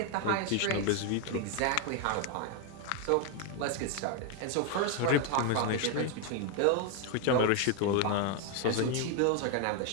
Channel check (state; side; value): different; both; correlation 0.01